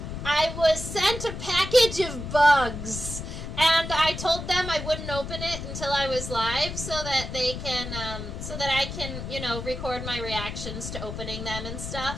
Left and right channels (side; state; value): left; noise; rumble, 7 dB below the sound